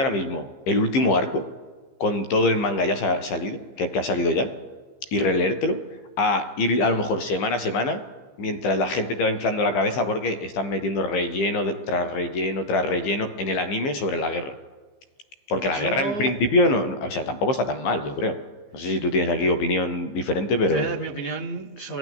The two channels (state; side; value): late; right; 15 ms